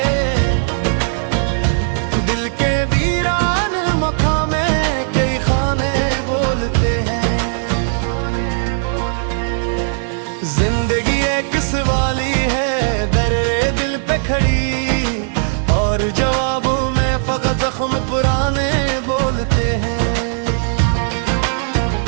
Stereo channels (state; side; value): silent; left; 68 dB below the other